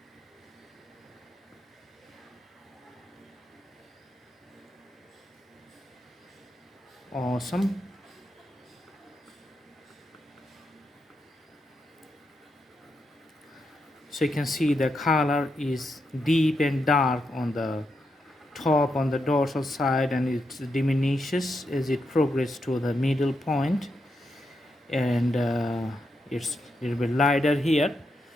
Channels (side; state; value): both; normal; correlation 0.83